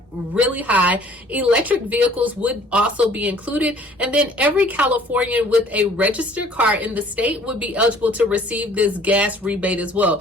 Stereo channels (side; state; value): both; normal; correlation 0.54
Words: really high. Electric vehicles would also be included. And then every Californian with a registered car in the state would be eligible to receive this gas rebate as well.